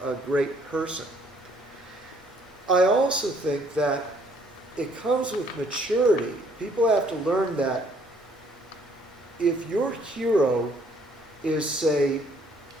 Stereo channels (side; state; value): both; normal; correlation 0.63